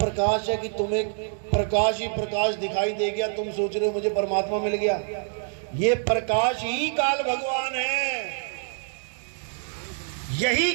है कि तुम्हें प्रकाश ही प्रकाश दिखाई दे गया, तुम सोच रहे हो मुझे परमात्मा मिल गया। ये प्रकाश ही काल भगवान है, यही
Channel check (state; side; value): silent; left; digital silence